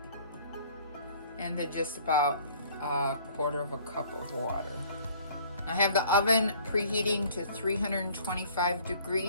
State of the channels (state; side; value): inverted; both; correlation -0.54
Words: And then just about a 1/4 cup of water. I have the oven preheating to 325